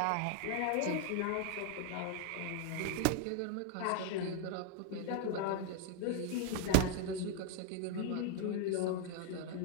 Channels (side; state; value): both; different; correlation 0.00